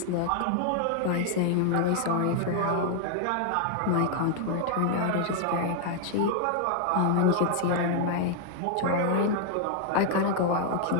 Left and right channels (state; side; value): different; both; correlation 0.00